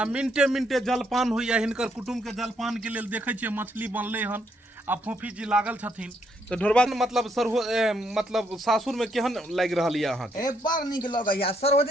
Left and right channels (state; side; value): normal; both; correlation 0.74